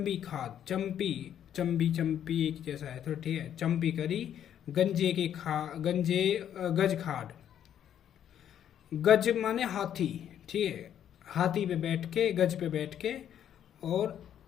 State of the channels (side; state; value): right; quieter; 9.9 dB